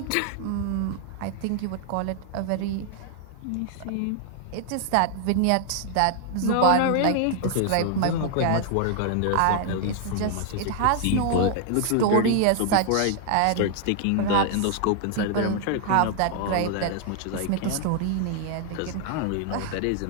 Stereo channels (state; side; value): different; both; correlation 0.00